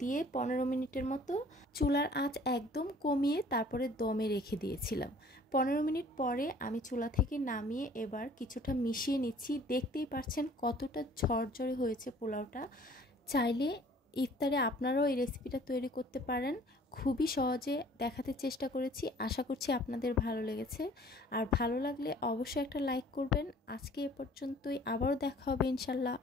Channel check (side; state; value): both; normal; correlation 0.53